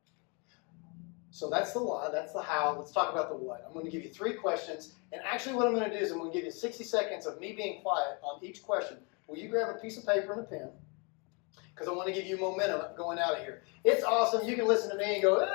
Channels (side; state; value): right; quieter; 32.9 dB